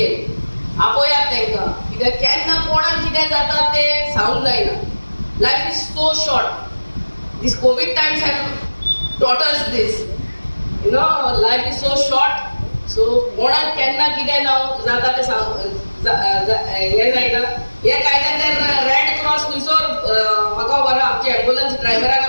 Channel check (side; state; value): both; inverted; correlation -1.00